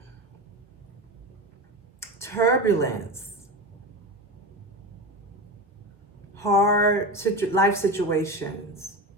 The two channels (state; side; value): normal; both; correlation 0.24